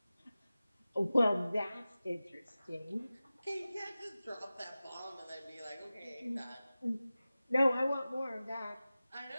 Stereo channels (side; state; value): both; inverted; correlation -0.96